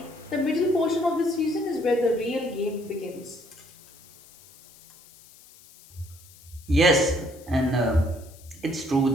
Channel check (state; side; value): noise; left; hiss, 24 dB below the sound